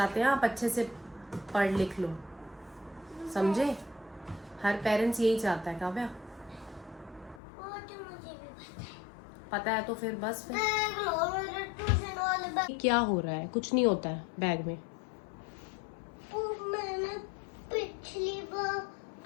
हैं आप अच्छे से पढ़ लिख लो, समझे। हर पेरेंट्स यही चाहता है काव्या। वो तो मुझे भी पता है तो फिर बस फिर। ट्यूशन वाले बैग। क्या हो रहा है? कुछ नहीं होता है बैग में। मैंने पिछली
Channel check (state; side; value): drops out; right; at 7.4 s